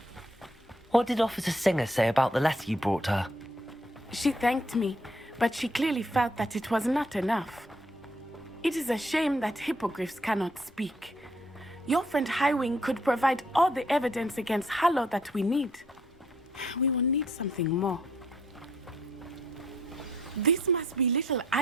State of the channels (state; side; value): normal; both; correlation 0.68